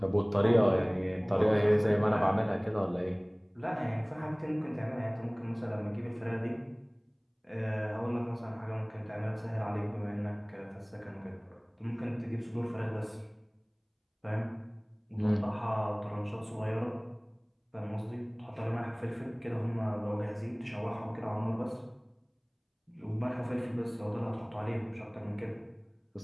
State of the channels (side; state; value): both; identical; correlation 1.00